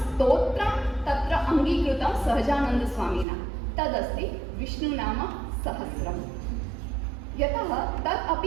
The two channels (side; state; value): left; drops out; at 3.2 s